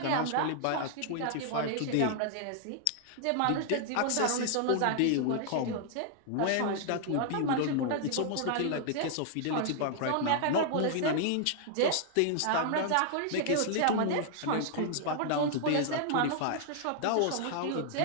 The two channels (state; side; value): different; both; correlation -0.01